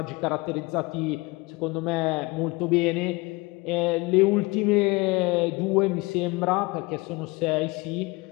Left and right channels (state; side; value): quieter; right; 24.4 dB